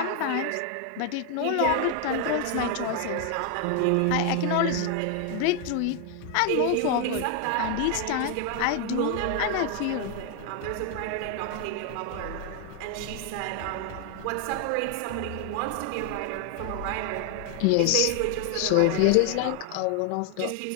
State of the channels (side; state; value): both; different; correlation 0.00